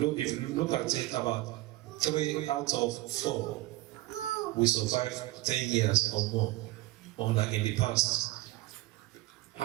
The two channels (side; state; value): left; quieter; 18.2 dB